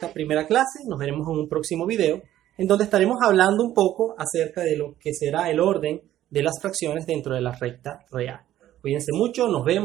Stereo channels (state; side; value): quieter; left; 13.0 dB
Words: primera clase. Nos veremos en un próximo video en donde estaremos hablando un poco acerca de lo que será el orden de las fracciones dentro de la recta real. Cuídense mucho, nos